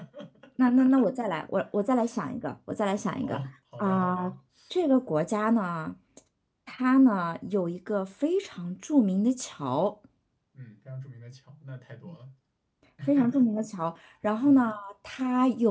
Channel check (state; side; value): identical; both; correlation 1.00